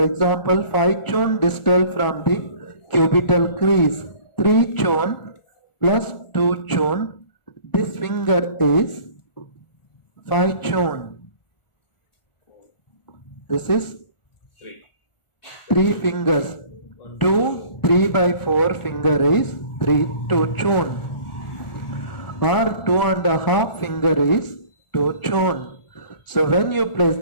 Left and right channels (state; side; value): late; right; 1.4 ms